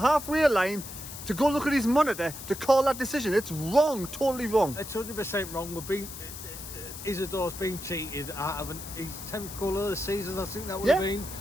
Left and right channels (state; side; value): noise; left; hiss, 11 dB below the sound